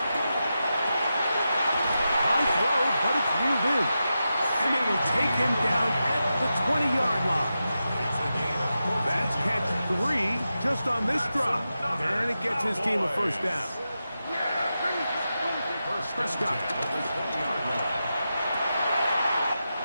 High throw, but it's reeled in. And they will take him down at the 20-yard line. That's catch 3 just on this drop. And it gets his team a first down. Prescott.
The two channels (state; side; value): inverted; both; correlation -0.90